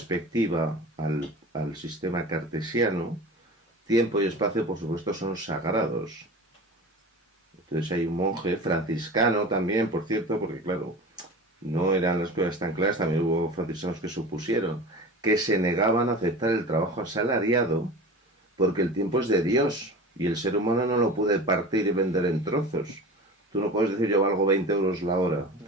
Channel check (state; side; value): normal; both; correlation 0.35